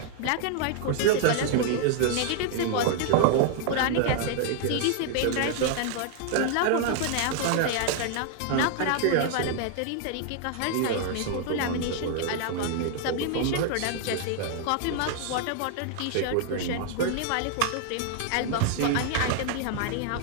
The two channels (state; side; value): different; both; correlation -0.01